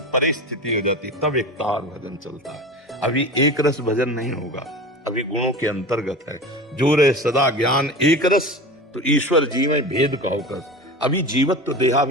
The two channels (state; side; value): normal; both; correlation 0.31